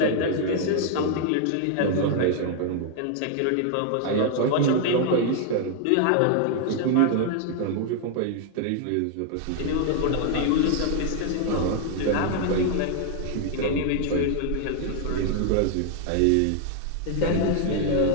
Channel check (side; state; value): both; different; correlation 0.00